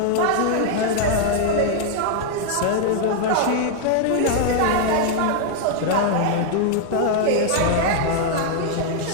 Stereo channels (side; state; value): both; different; correlation 0.00